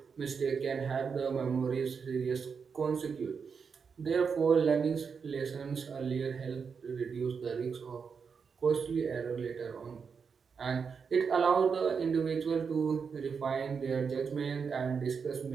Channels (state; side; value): quieter; left; 5.9 dB